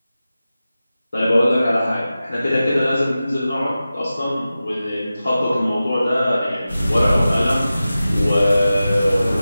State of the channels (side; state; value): both; inverted; correlation -0.94